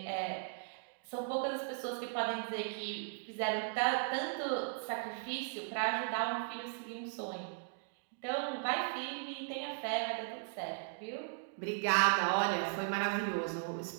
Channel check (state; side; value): silent; left; digital silence